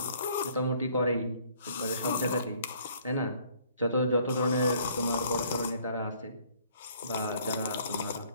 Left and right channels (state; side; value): inverted; both; correlation -0.60